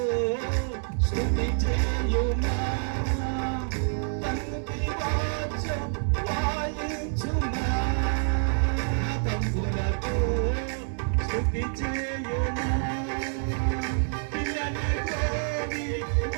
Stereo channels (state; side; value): silent; left; 58 dB below the other